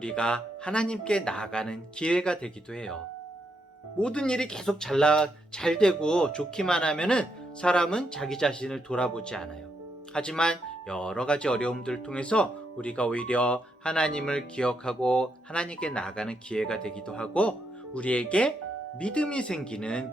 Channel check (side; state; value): both; normal; correlation 0.79